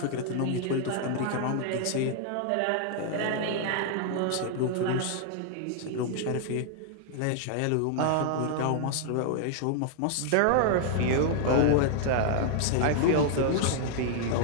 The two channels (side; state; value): both; different; correlation 0.00